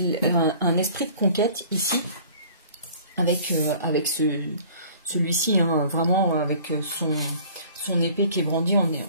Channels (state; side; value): inverted; both; correlation -0.50